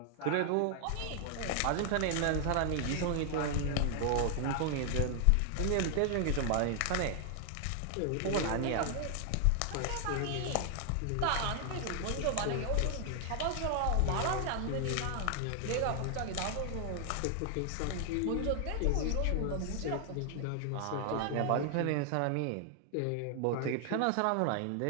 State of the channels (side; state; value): both; different; correlation 0.00